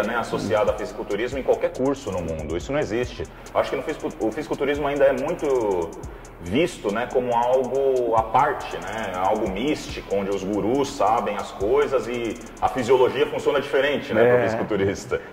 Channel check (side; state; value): both; identical; correlation 1.00